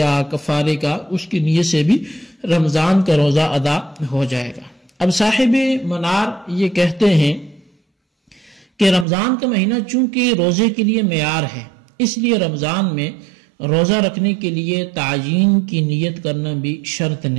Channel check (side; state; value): left; drops out; at 9.1 s